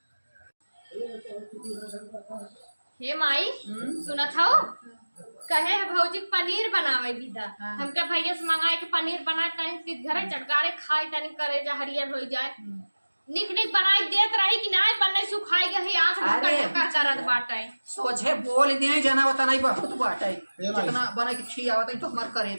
हे माई सुना था कहे है भौजी पनीर बनावे दीदा हमके भैया से मंगाए के पनीर बनाए तनी घरे चटकारे खाई तनी करे जा हरियर हो जाए निक निक बनाई देत रही कि नहीं बनने सुखाई गई आंख ढक्का अरे। ढक्का करत बाटे सोझे बोल दिए जना होता नहीं बहुत बाटे ए भाई। जितना बना के खी आवत है तो हमार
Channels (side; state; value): both; inverted; correlation -1.00